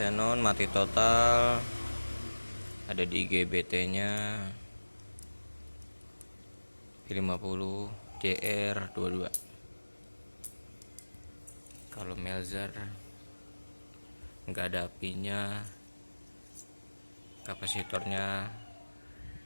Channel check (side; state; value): both; inverted; correlation -1.00